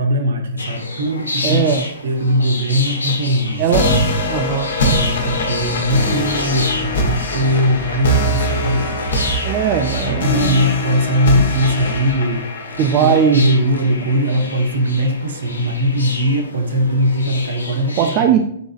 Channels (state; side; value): inverted; both; correlation -0.35